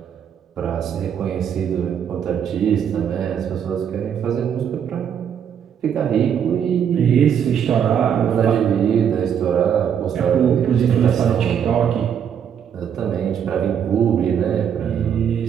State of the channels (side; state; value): left; quieter; 8.3 dB